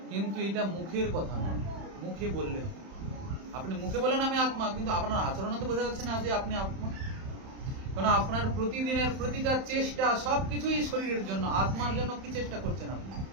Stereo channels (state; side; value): late; left; 31 ms